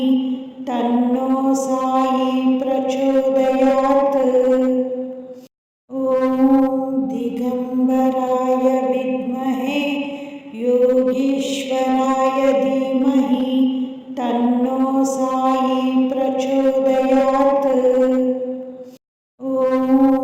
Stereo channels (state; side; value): identical; both; correlation 1.00